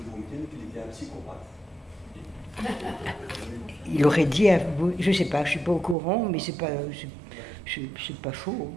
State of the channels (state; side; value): drops out; left; at 6.0 s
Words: Boumedienne qu'il était un psychopathe. Il aurait dit, je ne sais pas, je ne suis pas au courant, mais c'est pas faux.